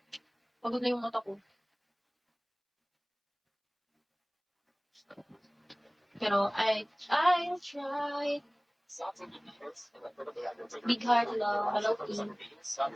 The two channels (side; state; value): both; identical; correlation 1.00